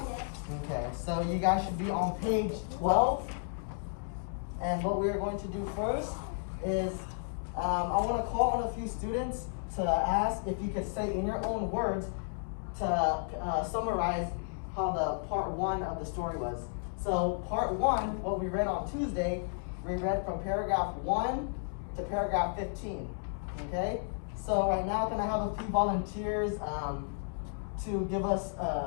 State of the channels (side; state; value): right; silent; digital silence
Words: Okay, so you guys should be on page 12. And what we're going to do first is I want to call on a few students to ask if you could say in your own words to summarize how the part 1 of the story was. So part 1, what we read on Tuesday, we read from paragraph 1 to paragraph 15. Okay? So right now I'm going to have a few volunteers to give us